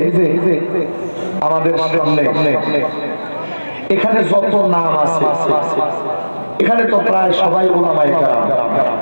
যে আমাদের সামনে এখানে যত নাম আছে, এখানে তো প্রায় সবাই উলামায়ে কেরাম।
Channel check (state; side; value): inverted; both; correlation -1.00